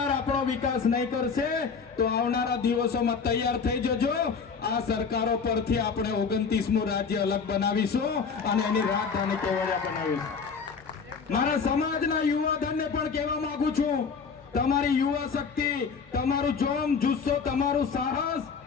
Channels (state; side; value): quieter; right; 5.6 dB